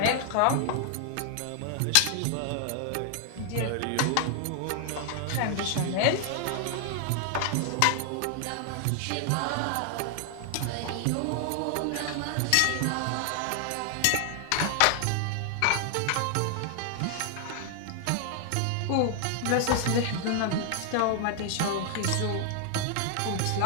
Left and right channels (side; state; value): both; different; correlation 0.00